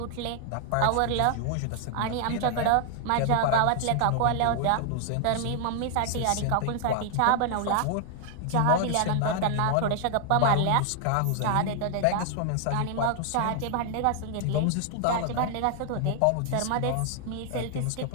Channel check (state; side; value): different; both; correlation 0.00